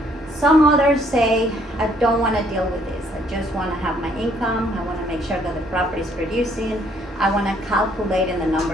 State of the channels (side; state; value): both; normal; correlation 0.65